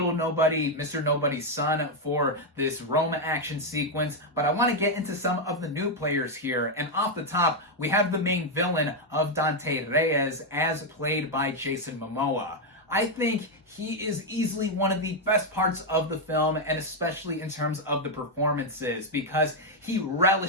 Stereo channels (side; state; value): both; normal; correlation 0.02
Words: Nobody, Mr. Nobody's son, for this Rome action sequence. But I want to get into some of the new players here. And off the top, we have the main villain of Dante Reyes, as played by Jason Momoa. I think he is easily one of the best parts of the film, and especially in terms of the performances, because he